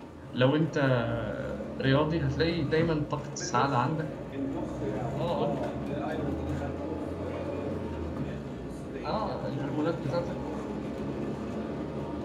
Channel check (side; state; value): both; identical; correlation 1.00